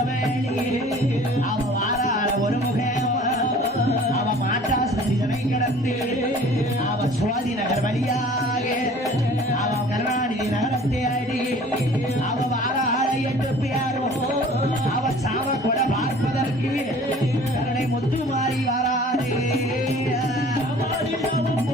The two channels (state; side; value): normal; both; correlation 0.48